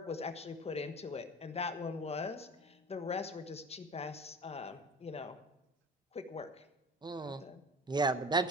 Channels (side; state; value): both; normal; correlation 0.38